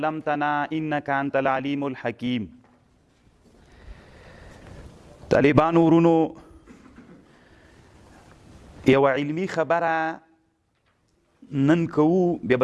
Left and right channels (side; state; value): both; identical; correlation 1.00